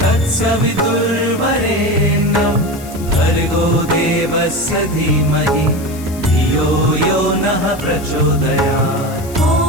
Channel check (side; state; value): left; noise; hiss, 18 dB below the sound